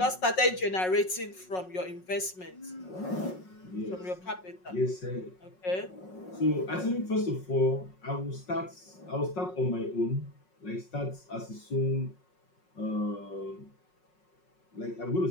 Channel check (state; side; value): late; right; 5.5 ms